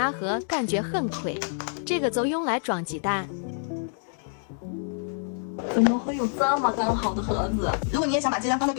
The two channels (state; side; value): silent; right; digital silence